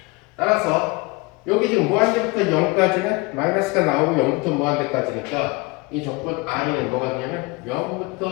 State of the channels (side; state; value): right; quieter; 25.5 dB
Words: 따라서 여기 지금 무한대부터 0까지는 마이너스가 나오고 0부터 무한대까지니까 이 적분 i는 뭐가 되냐면